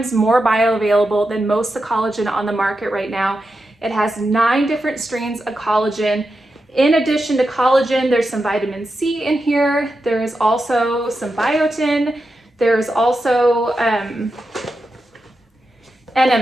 more bioavailable than most of the collagen on the market right now. It has 9 different strains of collagen. In addition to collagen, there's some vitamin C in here. There is also some biotin. There's also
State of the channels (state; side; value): normal; both; correlation 0.88